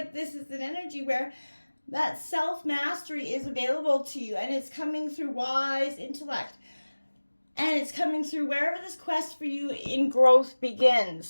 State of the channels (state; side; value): inverted; both; correlation -1.00